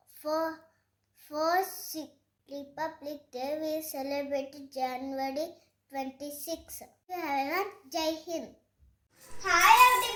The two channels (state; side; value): identical; both; correlation 1.00